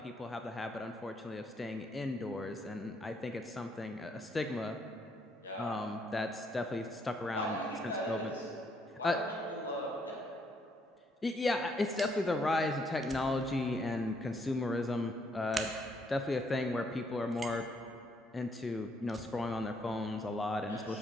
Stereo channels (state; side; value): normal; both; correlation 0.71